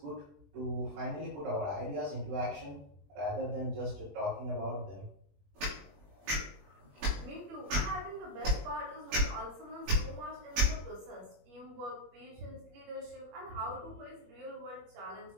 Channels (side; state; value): left; late; 20 ms